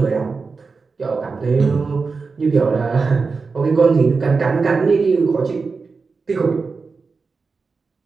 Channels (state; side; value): quieter; left; 4.6 dB